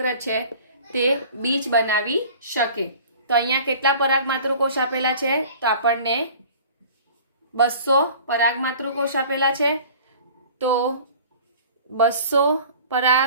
છે તે બીજ બનાવી શકે. તો અહીંયા કેટલા પરાગ માતૃકોષ આપેલા છે તો આપણને 200 પરાગ માતૃકોષ આપેલા છે. તો 200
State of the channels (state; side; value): inverted; both; correlation -0.45